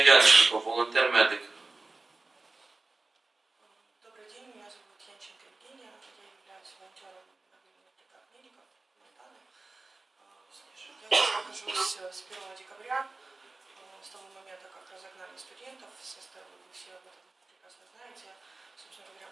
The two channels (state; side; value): quieter; left; 3.4 dB